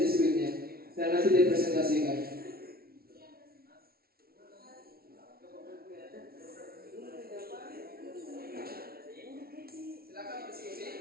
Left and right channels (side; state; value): left; late; 0.44 ms